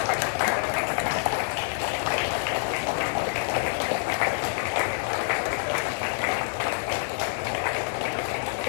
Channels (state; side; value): silent; right; 60 dB below the other